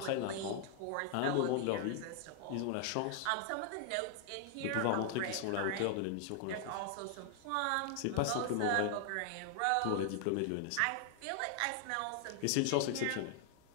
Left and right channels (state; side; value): different; both; correlation 0.00